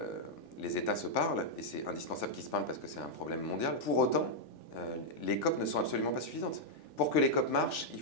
États se parlent, et c'est indispensable qu'ils se parlent parce que c'est un problème mondial. Pour autant, les COP ne sont absolument pas suffisantes. Pour que les COP marchent, il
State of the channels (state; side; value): late; right; 3.4 ms